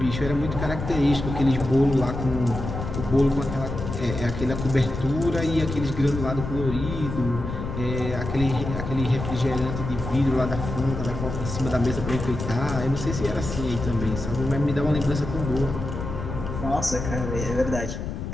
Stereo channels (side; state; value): left; noise; rumble, 6 dB below the sound